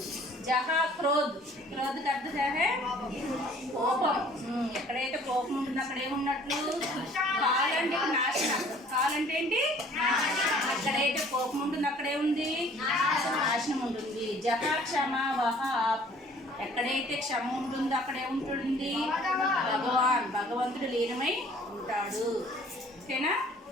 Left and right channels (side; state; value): both; normal; correlation 0.54